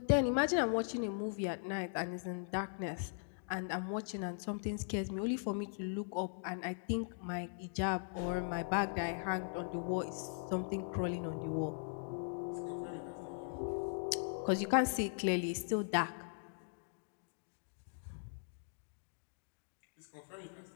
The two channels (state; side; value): silent; right; digital silence